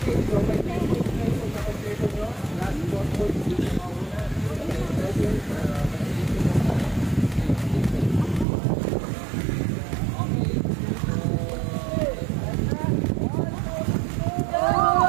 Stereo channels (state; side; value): drops out; left; at 8.5 s